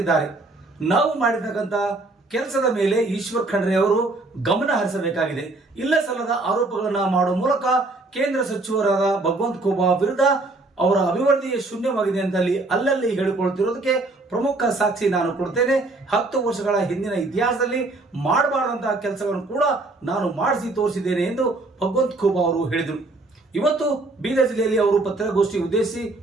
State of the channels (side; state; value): left; quieter; 3.1 dB